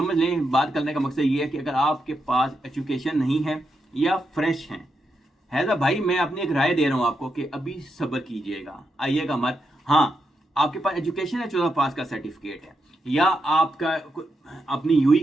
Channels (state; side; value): normal; both; correlation 0.84